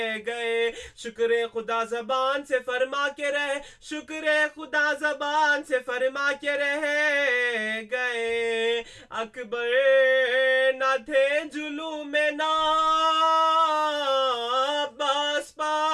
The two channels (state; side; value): identical; both; correlation 1.00